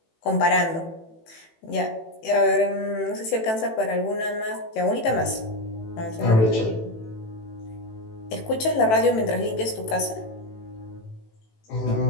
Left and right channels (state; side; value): late; right; 18 ms